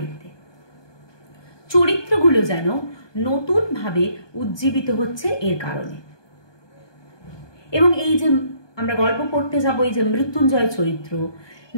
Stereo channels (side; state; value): right; late; 1.2 ms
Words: চরিত্রগুলো যেন নতুনভাবে উজ্জীবিত হচ্ছে এর কারণে। এবং এই যে আমরা গল্প পড়তে যাব, এই যে মৃত্যুঞ্জয় চরিত্র,